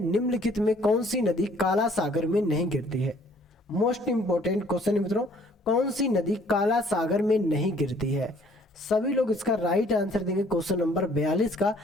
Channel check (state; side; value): normal; both; correlation 0.59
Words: निम्नलिखित में कौन सी नदी काला सागर में नहीं गिरती है? मोस्ट इंपॉर्टेंट क्वेश्चन है मित्रों, कौन सी नदी काला सागर में नहीं गिरती है? सभी लोग इसका राइट आंसर देंगे क्वेश्चन नंबर 42 का,